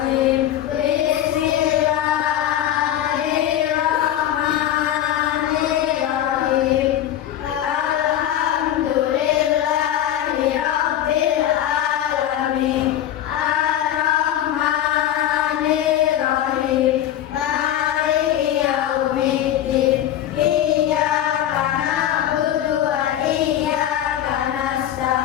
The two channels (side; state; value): right; quieter; 11.5 dB